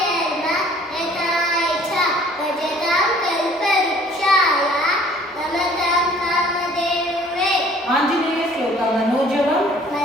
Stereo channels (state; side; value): normal; both; correlation 0.54